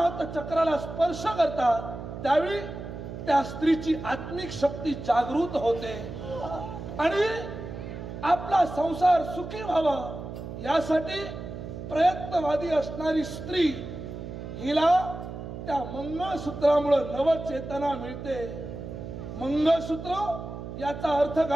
चक्राला स्पर्श करतात त्यावेळी त्या स्त्रीची आत्मिक शक्ती जागृत होते आणि आपला संसार सुखी व्हावा यासाठी प्रयत्नवादी असणारी स्त्री हिला त्या मंगळसूत्रामुळे नवचेतना मिळते. मंगळसूत्र याचा अर्थ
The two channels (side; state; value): right; noise; hum, 9 dB below the sound